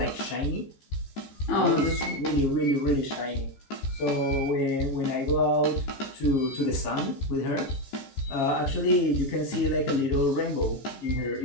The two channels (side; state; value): right; late; 14 ms